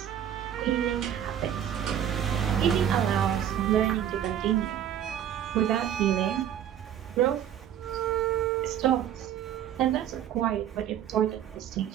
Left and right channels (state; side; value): quieter; left; 10.2 dB